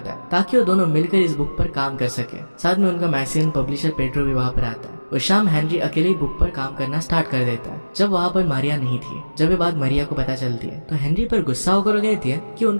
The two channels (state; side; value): inverted; both; correlation -1.00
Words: है, ताकि वो दोनों मिलकर इस बुक पर काम कर सके। साथ में उनका मैगजीन पब्लिशर पेड्रो भी वहाँ पर आता है। उस शाम हेनरी अकेले ही बुक पर काम करना स्टार्ट कर देता है, जब वहाँ पर मारिया नहीं थी। जब ये बात मारिया को पता चलती है तो हेनरी पर गुस्सा होकर कहती है कि